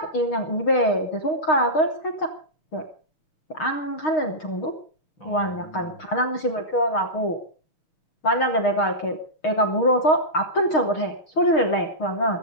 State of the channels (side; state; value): right; late; 6.5 ms